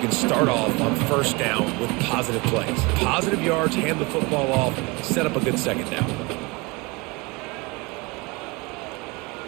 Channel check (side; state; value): left; quieter; 26.3 dB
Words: start off on first down with positive plays. Positive yards, hand the football off, set up a good second down.